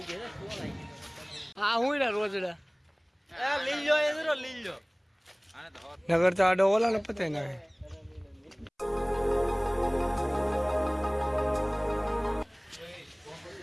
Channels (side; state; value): both; identical; correlation 1.00